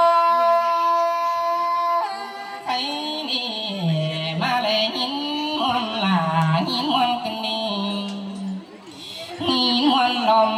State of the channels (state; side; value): identical; both; correlation 1.00